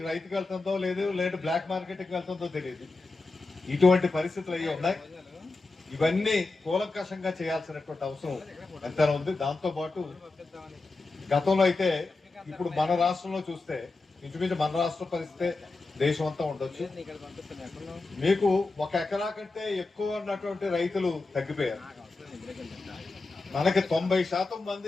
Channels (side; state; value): right; quieter; 3.5 dB